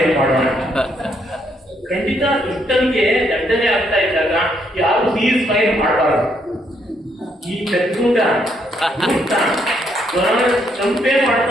ಏನ್ ಮಾಡೋಣ? ಖಂಡಿತ ದುಷ್ಟನಿಗೆ ದಂಡನೆ ಆಗ್ತಾ ಇದ್ದಾಗ ಯಾರು ಸೀಸ್ ಫೈರ್ ಮಾಡಬಾರದು. ಈ ಚತುರ ಸಂಪೇ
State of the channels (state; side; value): normal; both; correlation 0.73